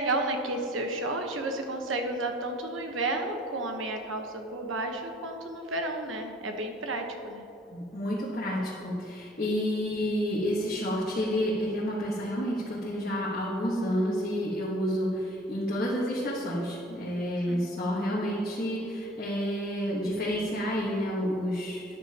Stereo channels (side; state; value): both; normal; correlation 0.53